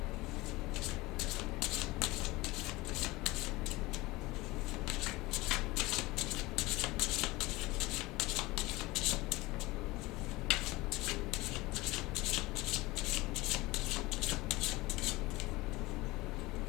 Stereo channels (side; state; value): right; quieter; 21.0 dB